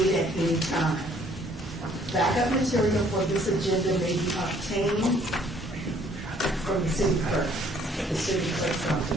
at any time. Backup material for this agenda may be obtained from the city clerk, the city clerk's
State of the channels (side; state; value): both; normal; correlation 0.61